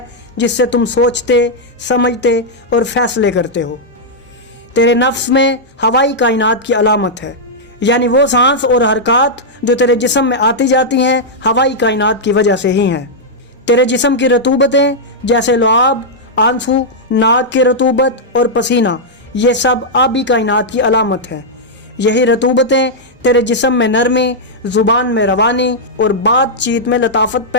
जिससे तुम सोचते, समझते और फैसले करते हो। तेरे नफ्स में हवाई कायनात की अलामत है, यानी वो सांस और हरकत जो तेरे जिस्म में आती जाती हैं हवाई कायनात की वजह से ही हैं। तेरे जिस्म की रतूबतें जैसे लुआब, आंसू, नाक की रतूबत और पसीना, ये सब आबी कायनात की अलामत है। यही रतूबतें तेरे जिस्म में नरमी, ज़ुबान में रवानी और बातचीत में लताफत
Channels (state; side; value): normal; both; correlation -0.06